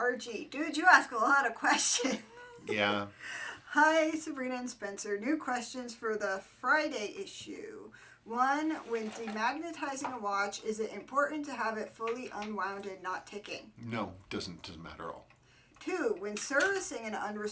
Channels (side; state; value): both; identical; correlation 1.00